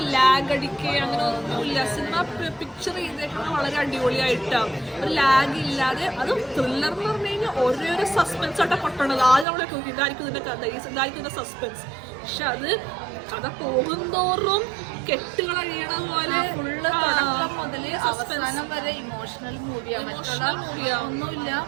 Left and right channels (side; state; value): left; drops out; at 9.5 s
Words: ലാഗ് അടിക്കുക അങ്ങനെ ഒന്നുമില്ല. സിനിമ പിക്ചർ ചെയ്തേക്കുന്നത് വളരെ അടിപൊളിയായിട്ടാണ്, ഒരു ലാഗ് ഇല്ലാതെ. അത് ത്രില്ലർ എന്ന് പറഞ്ഞു കഴിഞ്ഞാൽ ഓരോരോ സസ്പെൻസ് ആയിട്ടാണ് പൊട്ടണത്. ആദ്യം നമ്മളെ ഇതായിരിക്കും ഇതിൻ്റെ കഥ, ഇതായിരിക്കും ഇതിൻ്റെ സസ്പെൻസ്. പക്ഷെ അത് കഥ പോകുന്തോറും കെട്ടുകൾ അഴിയണ പോലെ ഫുള്ള് തുടക്കം മുതൽ അവസാനം വരെ ഇമോഷണൽ മൂവിയാണ്. ഒന്നുമില്ല.